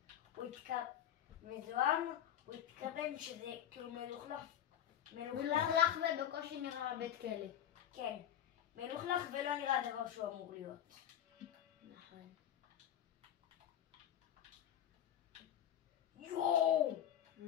הוא מזוהם, הוא התכוון שזה כאילו מלוכלך. מלוכלך ובקושי נראה בית כלא. כן, מלוכלך ולא נראה דבר שהוא אמור להיות. נכון. יואו!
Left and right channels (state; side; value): quieter; right; 10.6 dB